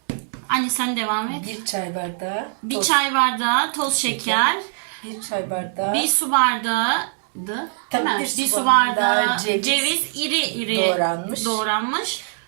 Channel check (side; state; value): left; silent; digital silence